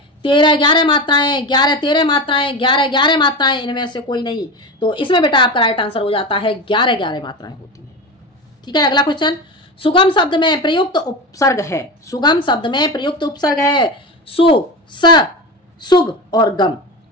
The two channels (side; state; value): both; normal; correlation 0.24